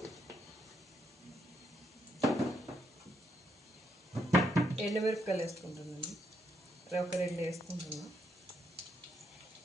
ఎండుమిరపకాయలు వేసుకుంటానండి. ఒక 2 వేసుకుంటున్నా.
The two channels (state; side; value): normal; both; correlation 0.76